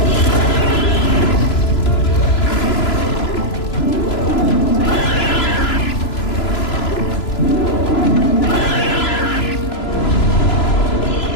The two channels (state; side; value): late; right; 3.0 ms